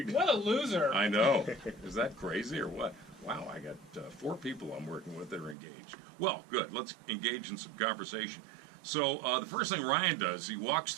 What a loser. I know. Is that crazy or what? Wow, I got 4 people I'm working with that are engaged. Well, good. Let's engage in some conversation. So the first thing Ryan does, he walks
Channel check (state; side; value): drops out; left; at 5.6 s